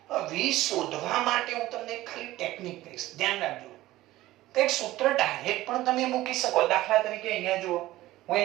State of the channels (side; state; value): left; quieter; 16.4 dB